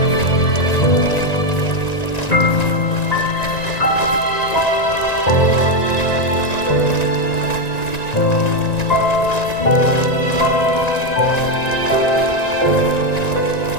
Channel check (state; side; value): late; right; 1.9 ms